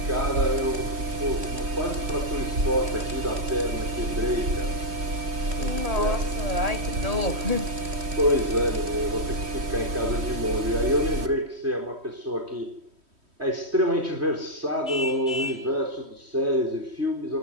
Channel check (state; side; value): late; left; 3.1 ms